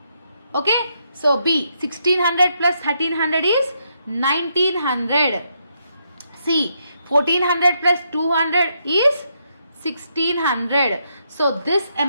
Okay. So B 1600 plus 1300 is 1900. C 1400 plus 200 is 1600. So this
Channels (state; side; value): inverted; both; correlation -0.77